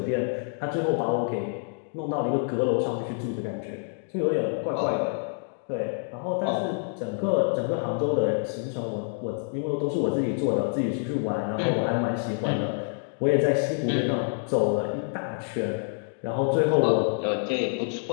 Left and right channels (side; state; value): right; silent; 60 dB below the other